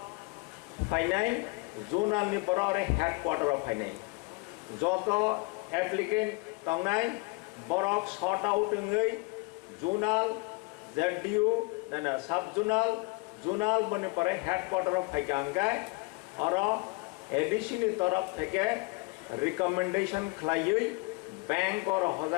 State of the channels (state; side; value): quieter; right; 27.7 dB